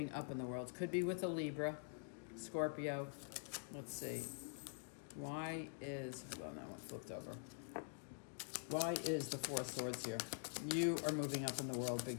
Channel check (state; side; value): silent; right; digital silence